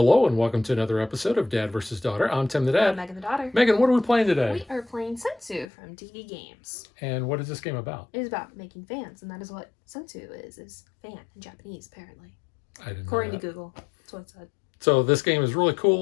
and welcome to another episode of Dad vs. Daughter. I'm Tim the Dad. I'm Megan the Daughter. Megan, what are we playing today? We are playing Sensu from DV Games. And what is this game about? It is about making fans, and that is what Sensu is fan in Japanese, apparently. I didn't know According that. to Google, that's what it said. So this game is really cool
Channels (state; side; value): drops out; right; at 5.7 s